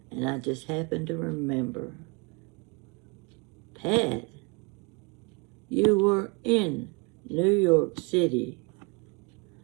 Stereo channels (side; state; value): left; quieter; 30.2 dB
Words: And I just happened to remember. Pat, you were in New York City